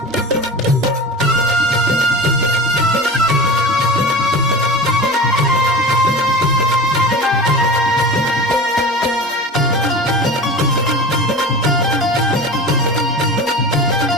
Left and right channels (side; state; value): both; normal; correlation 0.33